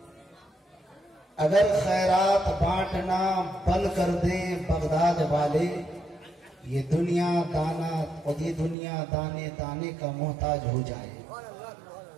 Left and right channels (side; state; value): left; drops out; at 8.8 s